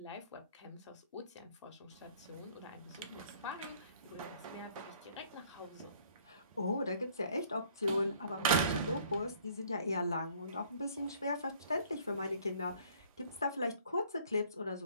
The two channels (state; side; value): inverted; both; correlation -0.58